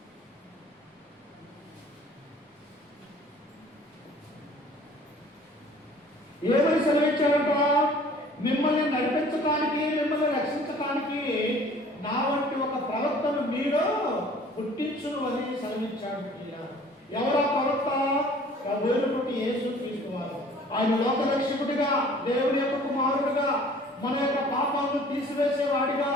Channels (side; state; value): both; normal; correlation 0.51